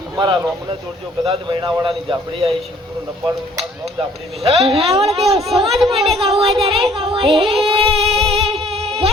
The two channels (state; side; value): normal; both; correlation 0.58